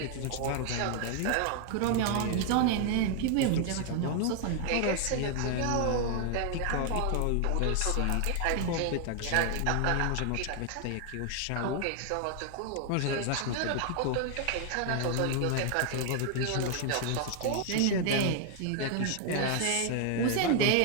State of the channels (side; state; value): both; different; correlation 0.00